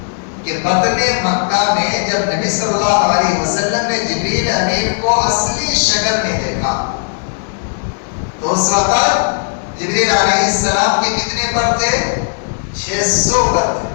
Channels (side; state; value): right; silent; digital silence